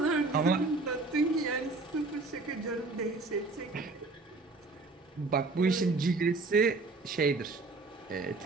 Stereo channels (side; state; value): left; quieter; 3.6 dB